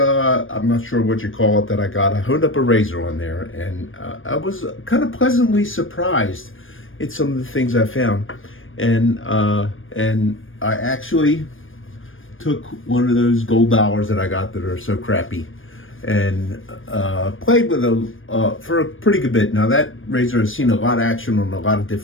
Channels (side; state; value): right; late; 0.59 ms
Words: I'm not sure what you call it, that I got. I honed up a razor on there, and I was kind of pleasantly surprised at some of the things I found. And I actually took one of those gold dollars that I got that are so crappy and played with it for a pretty good bit. Now, that razor has seen a lot of action on a lot of